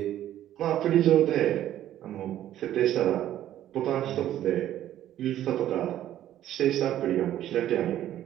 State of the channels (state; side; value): quieter; left; 12.2 dB